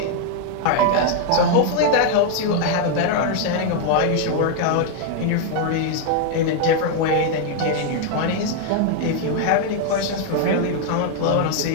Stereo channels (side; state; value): both; different; correlation 0.00